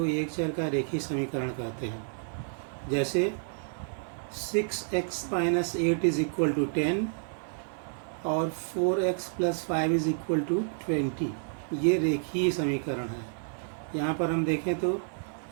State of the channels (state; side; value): silent; left; 55 dB below the other